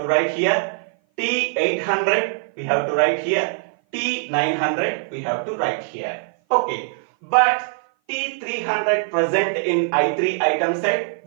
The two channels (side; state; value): left; silent; 56 dB below the other